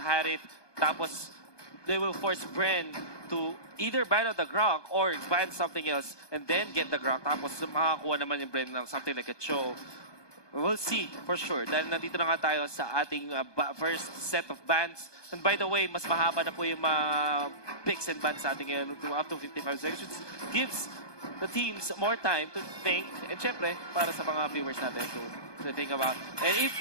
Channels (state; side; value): late; right; 1.2 ms